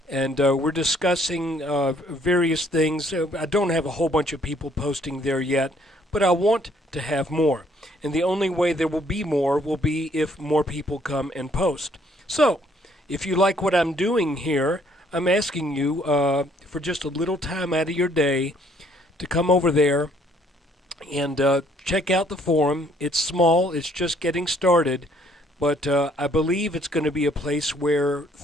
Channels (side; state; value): both; normal; correlation 0.64